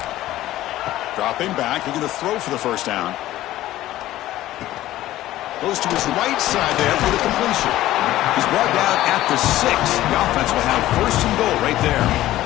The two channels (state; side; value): quieter; right; 14.9 dB